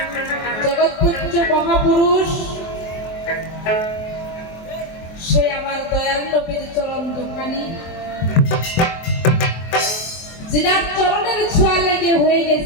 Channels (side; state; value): right; late; 24 ms